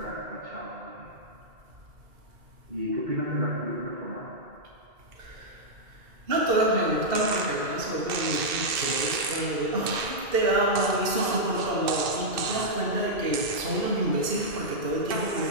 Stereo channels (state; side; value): late; left; 2.6 ms